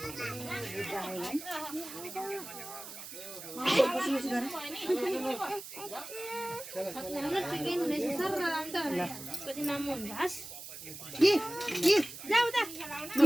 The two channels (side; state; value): right; noise; hiss, 12 dB below the sound